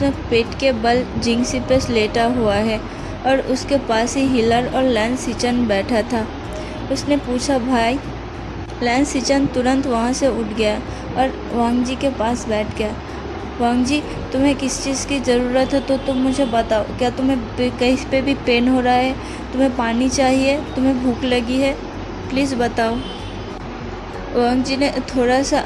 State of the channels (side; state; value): both; identical; correlation 1.00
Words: पेट के बल जिंगसी पे लेटा हुआ है और उसके पास ही हिलर और लैन सिचान बैठा था। उसने पूछा, भाई? लैन सिचान तुरंत वहाँ से उठ गया और वांगजी के पास बैठ गया। वांगजी, तुम्हें किस चीज़ की ज़रूरत है तो तुम मुझे बताओ। क्या तुम्हें कहीं पे भी पेन हो रहा है? तुम्हें पानी चाहिए? तुम्हें भूख लगी है? प्लीज़ बताओ। वांगजी ने थोड़ा